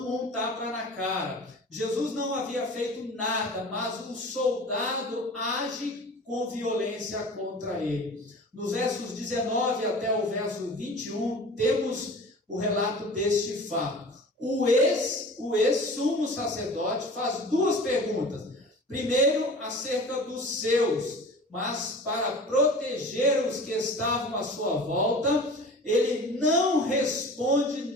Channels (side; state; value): both; normal; correlation 0.40